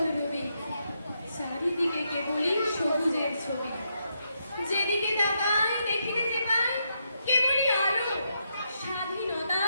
রবি, চারিদিকে কেবলই সবুজের ছবি। যেদিকে তাকাই দেখিতে যে পাই কেবলই আলো,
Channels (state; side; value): inverted; both; correlation -0.80